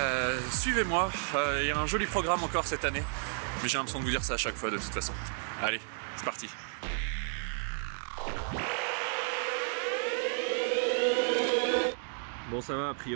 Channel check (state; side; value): silent; left; 56 dB below the other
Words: Suivez-moi, il y a un joli programme encore cette année, mais j'ai l'impression de vous dire ça à chaque fois de toute façon. Allez, c'est parti. Bon ça va, a